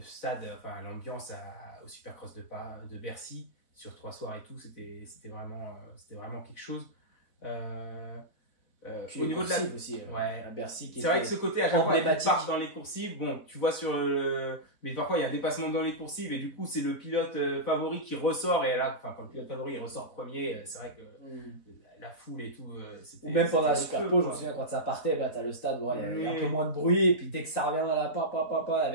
l'ambiance au Supercross de Bercy sur 3 soirs et tout, c'était vraiment quelque chose. Au niveau de la aussi, à Bercy, c'est vrai que ce côté à chaque fois ils partent dans les coursives, tu vois mais parfois il y a un dépassement dans les coursives et du coup c'est le pilote favori qui ressort et là quand le pilote favori il ressort premier, c'est vrai que la foule et tout c'était, ou même pendant la Superpole, je me souviens quand ça partait, t'as le stade, il y a un peu moins de bruit et puis dès que ça revient à la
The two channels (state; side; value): late; right; 4.0 ms